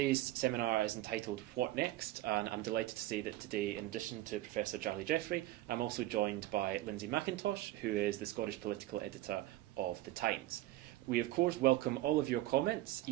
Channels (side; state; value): left; quieter; 16.1 dB